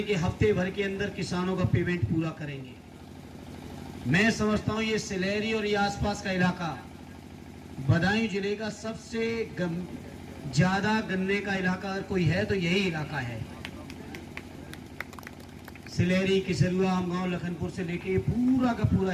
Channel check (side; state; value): both; identical; correlation 1.00